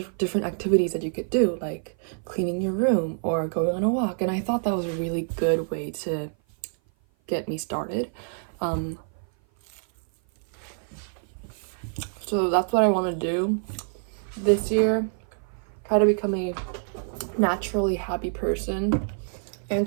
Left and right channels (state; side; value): silent; left; 56 dB below the other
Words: activities that you could do, like cleaning your room or going on a walk, and I thought that was a really good way to get me started. So that's what I want to do this year, try to become a naturally happy person and